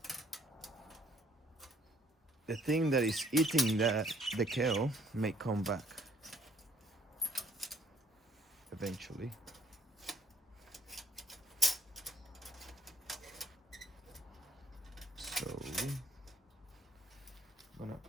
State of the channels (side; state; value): both; normal; correlation 0.63